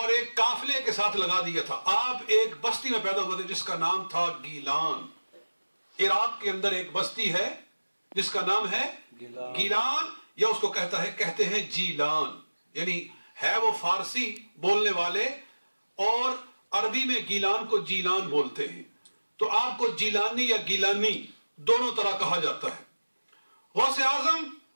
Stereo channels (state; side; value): inverted; both; correlation -1.00